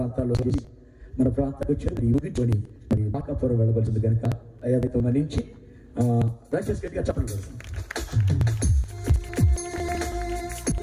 మన ప్రాంతానికి వచ్చి ఊగికొని మరి మాకాపురం వెళ్ళవలసింది కనుక అయ్యాతో మన్నించి దయచేసి గట్టిగా చెప్పండి.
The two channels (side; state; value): both; identical; correlation 1.00